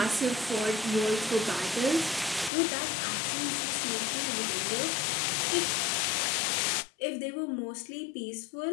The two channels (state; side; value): drops out; right; at 2.5 s